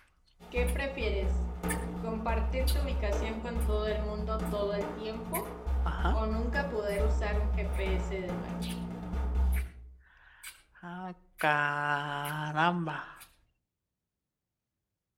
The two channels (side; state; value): both; identical; correlation 1.00